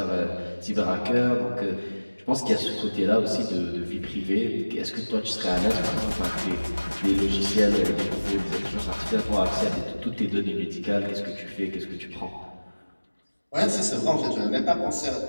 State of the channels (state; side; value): inverted; both; correlation -1.00